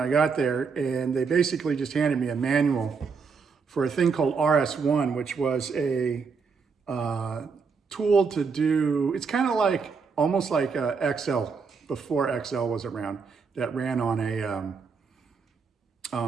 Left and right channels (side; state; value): left; quieter; 5.3 dB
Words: got there. And they basically just handed me a manual for a thing called RS1, which was a tool to do, it's kind of like, almost like Excel, before Excel was around, that ran on